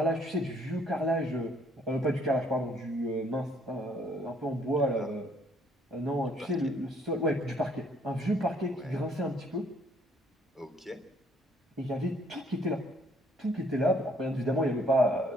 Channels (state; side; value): normal; both; correlation 0.64